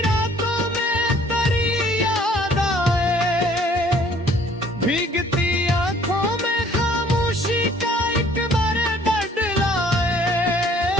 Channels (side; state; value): both; normal; correlation 0.58